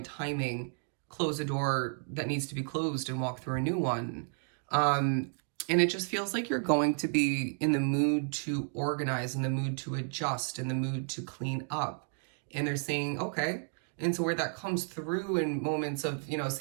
timing, close a door that needs to be closed and walk through a new one. And it just feels like you're going to be in the mood to organize, in the mood to adjust, in the mood to clean up. And they're saying, okay. And so where that comes through in moments of, you know,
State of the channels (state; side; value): silent; left; 56 dB below the other